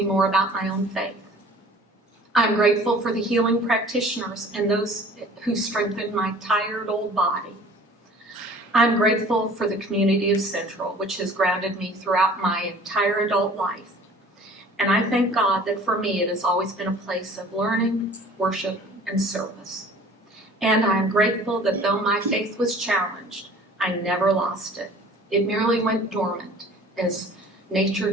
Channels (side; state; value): both; normal; correlation 0.48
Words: more about my own faith. I'm grateful for the healing practitioners and those who strengthened my tired old body. I'm grateful for the community of Central, which has grounded me throughout my entire adult life. And I thank God that for me it has always been a place of learning, worship, and service. And I am grateful that though my faith was challenged, I never lost it. It merely went dormant, as